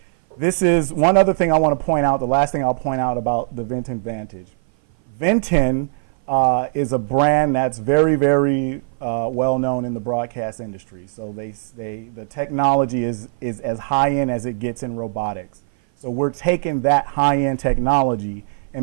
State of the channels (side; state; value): left; silent; 58 dB below the other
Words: This is one other thing I want to point out. The last thing I'll point out about the Vinten Vantage. Vinten is a brand that's very, very well known in the broadcast industry. So the technology is as high end as it gets in robotics. So we're taking that high end technology